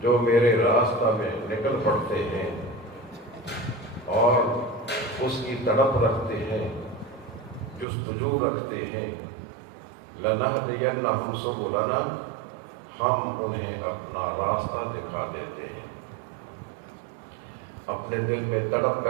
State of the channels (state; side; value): drops out; left; at 7.9 s